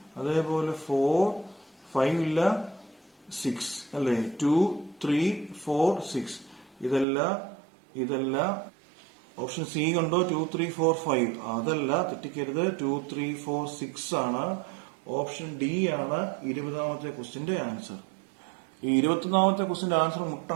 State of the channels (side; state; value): left; drops out; at 7.1 s